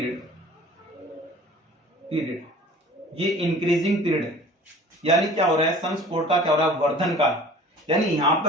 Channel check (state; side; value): normal; both; correlation 0.46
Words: पीरियड, ये इंक्रीजिंग पीरियड है, यानी क्या हो रहा है, सनस्पॉट का क्या हो रहा है, वर्धन काल, यानी यहां